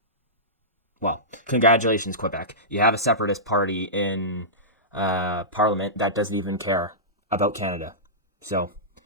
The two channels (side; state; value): both; normal; correlation -0.17